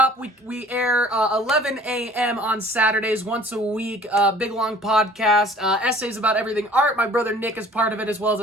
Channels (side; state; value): both; normal; correlation 0.50